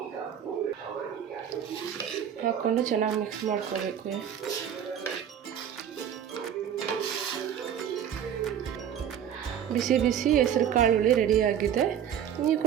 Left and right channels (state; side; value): quieter; left; 9.2 dB